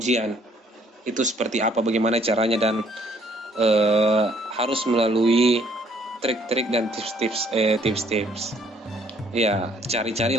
itu seperti apa, bagaimana caranya, dan harus melalui trik-trik dan tips-tips. Ya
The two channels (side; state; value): both; normal; correlation 0.63